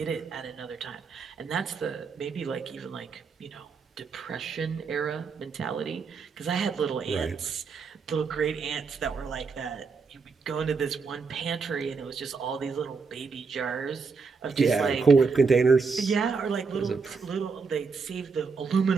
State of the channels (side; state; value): left; quieter; 5.0 dB